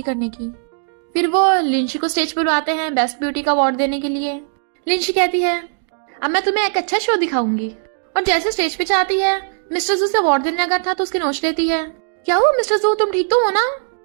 करने की। फिर वो लिंशी को स्टेज पर बुलाते हैं बेस्ट ब्यूटी का अवार्ड देने के लिए। लिंशी कहती है अब मैं तुम्हें एक अच्छा शो दिखाऊंगी। और जैसे स्टेज पे जाती है, मिस्टर जू से अवार्ड देने लगा था तो उसकी नोच लेती है। क्या हुआ मिस्टर जू, तुम ठीक तो हो ना?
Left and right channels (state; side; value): silent; left; digital silence